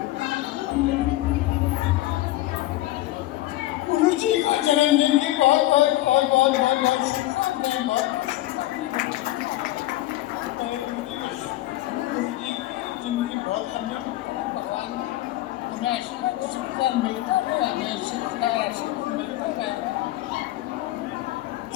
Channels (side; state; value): right; quieter; 16.3 dB